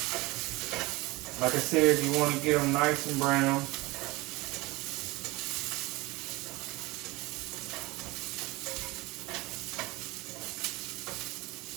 Like I said, you wanna get them nice and brown.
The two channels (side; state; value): left; quieter; 22.0 dB